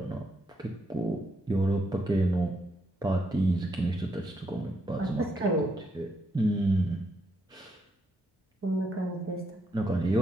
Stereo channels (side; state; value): both; normal; correlation 0.78